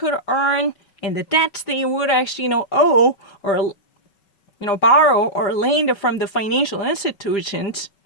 earn and the debts they would actually, owe or borrow or lend from the financial institutions.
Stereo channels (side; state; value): right; late; 5.3 ms